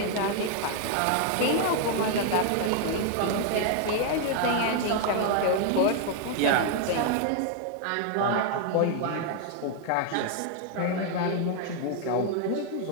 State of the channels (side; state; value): both; different; correlation 0.00